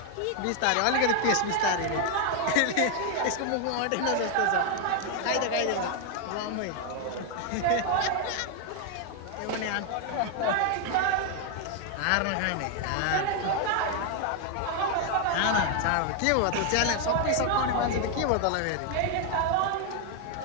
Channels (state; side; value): different; both; correlation 0.01